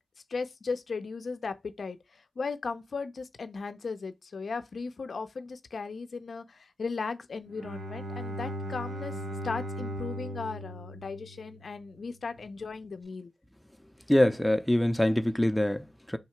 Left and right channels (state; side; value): normal; both; correlation 0.93